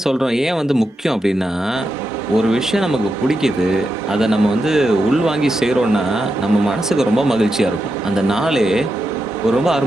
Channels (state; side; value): normal; both; correlation 0.87